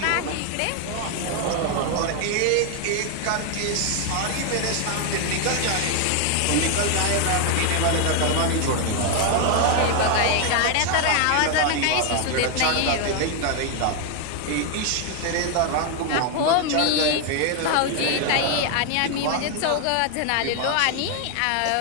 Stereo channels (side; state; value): both; different; correlation 0.00